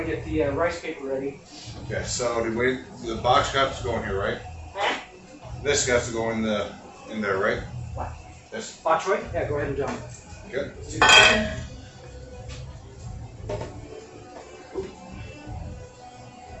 get the rice paper ready. Okay, so the box got to go in here, right? Huh? This got to go in there, right? What? This. Bok choy? Yeah, go ahead and jump. Good. Let's do the second.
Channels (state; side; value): identical; both; correlation 1.00